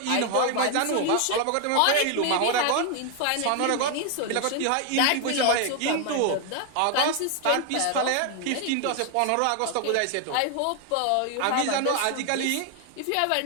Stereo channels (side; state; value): both; different; correlation 0.01